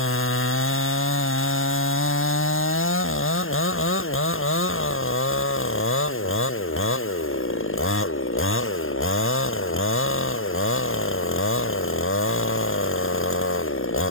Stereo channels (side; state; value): right; late; 0.60 ms